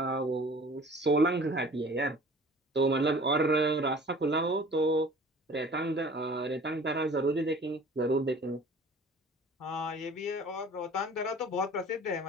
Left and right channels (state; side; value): normal; both; correlation 0.46